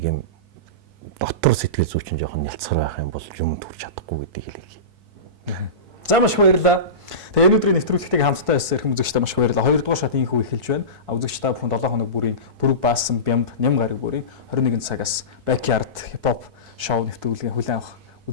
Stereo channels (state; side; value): late; left; 4.6 ms